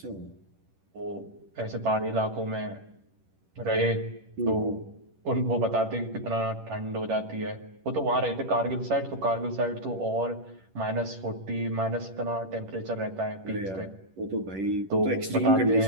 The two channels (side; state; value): left; late; 10 ms